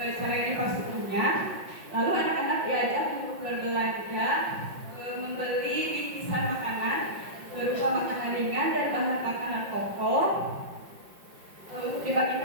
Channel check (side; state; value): left; late; 5.5 ms